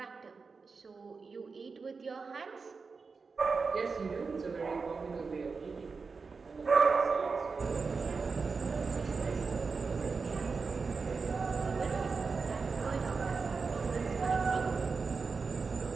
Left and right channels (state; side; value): quieter; left; 4.7 dB